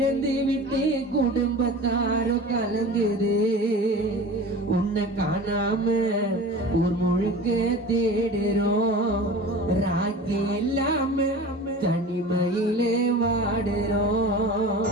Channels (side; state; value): both; normal; correlation 0.37